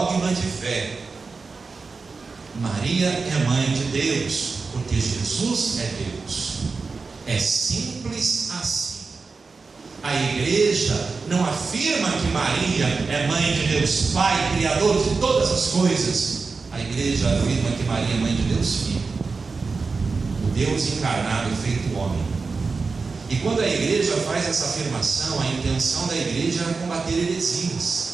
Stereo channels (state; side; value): quieter; left; 4.4 dB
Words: de fé. Maria é mãe de Deus porque Jesus é Deus. É simples assim. A igreja não afirma que Maria é mãe de Deus Pai, Criador de todas as coisas. A igreja afirma que Maria é mãe de Deus Filho, o Deus encarnado e feito homem. E quando a igreja faz essa afirmação, a intenção da igreja é combater